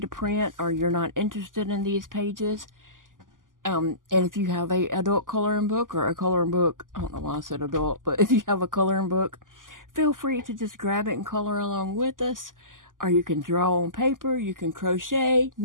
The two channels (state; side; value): late; left; 0.89 ms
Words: print, or you're not interested in these pages, and if you have a adult coloring book or a coloring book, I don't know why I said adult, but if you have a coloring book, feel free to just grab it and color along with us. Or you can draw on paper, you can crochet,